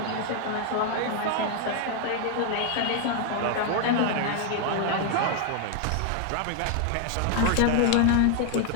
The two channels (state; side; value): different; both; correlation 0.01